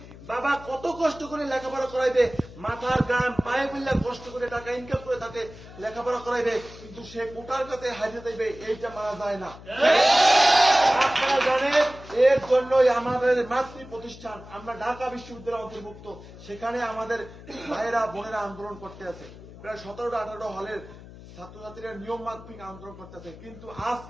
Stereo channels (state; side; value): noise; left; hum, 17 dB below the sound